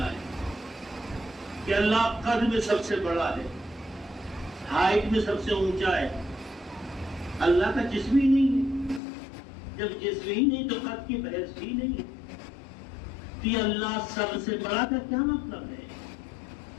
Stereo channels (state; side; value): drops out; right; at 9.0 s